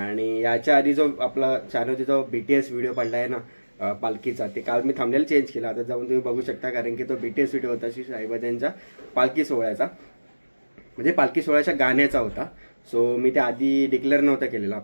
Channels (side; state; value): both; inverted; correlation -1.00